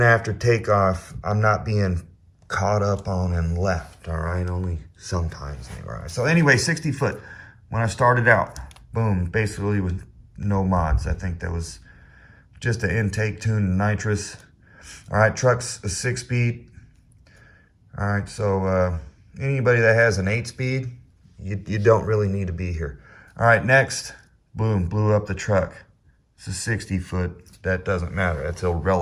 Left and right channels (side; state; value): both; identical; correlation 1.00